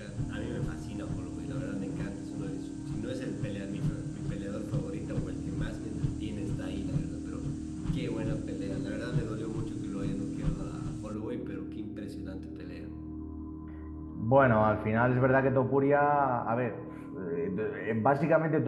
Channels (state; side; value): identical; both; correlation 1.00